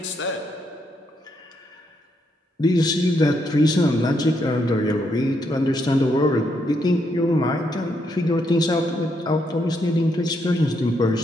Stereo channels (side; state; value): both; normal; correlation 0.77